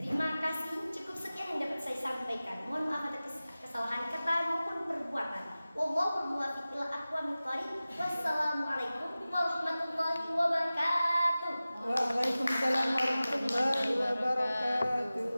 Terima kasih, cukup sekian yang dapat saya sampaikan. Mohon maaf atas kesalahan kata maupun perbuatan. Wallahul muwaffiq ila aqwamit thoriq. Wassalamualaikum warahmatullahi wabarakatuh. Waalaikumsalam warahmatullahi wabarakatuh.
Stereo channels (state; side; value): inverted; both; correlation -0.97